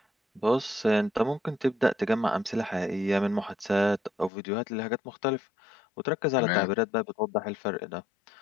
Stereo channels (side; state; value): right; drops out; at 4.3 s